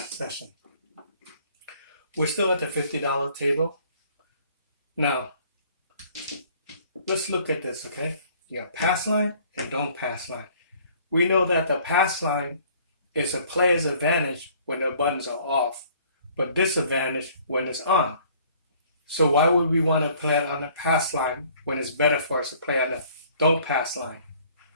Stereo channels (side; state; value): both; inverted; correlation -0.56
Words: We're still at the $50 table. Now, let's look at this, okay? You got pass line and don't pass line. We know that the pass line is a player's advantage when the buttons are off, but disadvantage when it's on. So why would we want to play it on the pass line when it's better for us to play on the don't pass line?